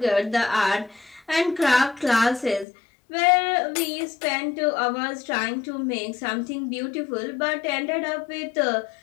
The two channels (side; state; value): right; drops out; at 2.7 s